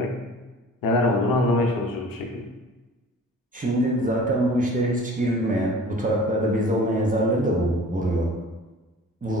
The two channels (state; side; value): normal; both; correlation 0.45